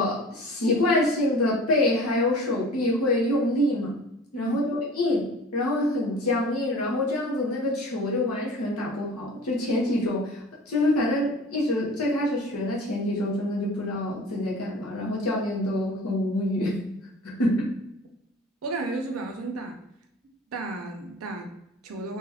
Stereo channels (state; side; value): normal; both; correlation 0.42